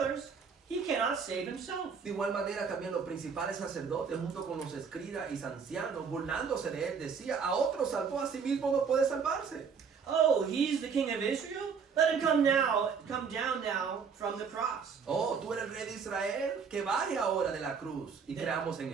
he cannot save himself. De igual manera también los principales sacerdotes junto con los escribas y ancianos burlándose de él decía, a otro salvó, a sí mismo no puede salvarse. Oh, he's the king of Israel? Let him come down now from the cross. Oh, tú eres el rey de Israel, que baje ahora de la cruz y creamos en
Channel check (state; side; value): quieter; left; 6.0 dB